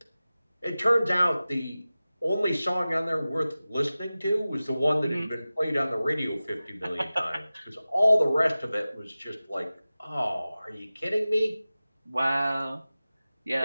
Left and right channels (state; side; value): inverted; both; correlation -0.96